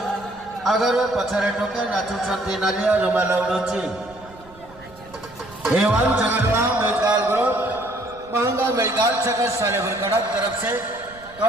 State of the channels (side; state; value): right; noise; rumble, 23 dB below the sound